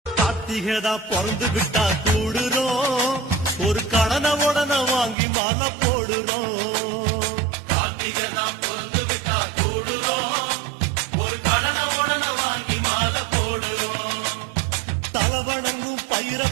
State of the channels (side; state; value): left; drops out; at 5.2 s